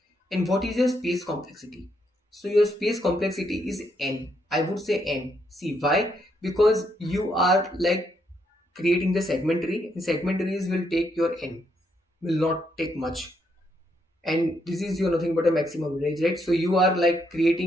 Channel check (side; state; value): both; normal; correlation 0.76